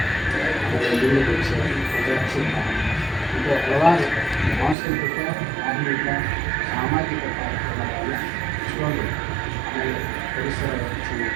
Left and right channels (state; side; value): drops out; left; at 4.8 s